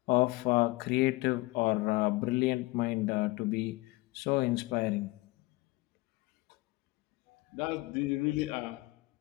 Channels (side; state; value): right; quieter; 21.7 dB